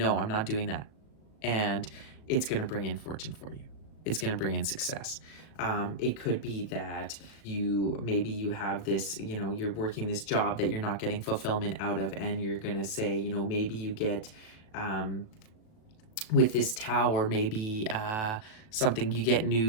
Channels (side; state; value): right; late; 37 ms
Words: I'm not doing that. And it's going to bring in fortune for you. It's going to bring in success. It could be that maybe you have this, you know, you're working this job that you're not getting fulfillment out of, and you're going to say, you know, maybe you get, with this Tower, maybe something, you get